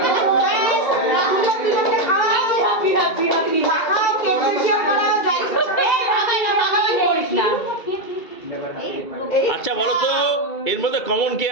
আচ্ছা বলো তো এর মধ্যে কমন কে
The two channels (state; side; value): late; right; 2.3 ms